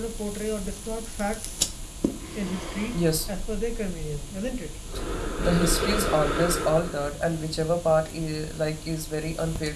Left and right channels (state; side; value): identical; both; correlation 1.00